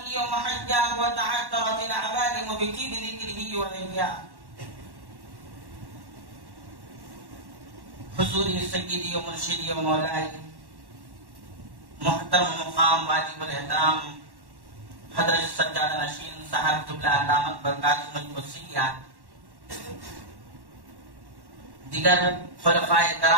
ومحجاه وتعثرت العبادم بجيب ذكره ولياه. حضوری سیدی و مرشدی و مولائی محترم مقام واجب الاحترام حضرت سجاد نشین صاحب جبلہ دامت برکاتہ القدسیہ، دیگر خلفائے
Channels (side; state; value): left; late; 1.1 ms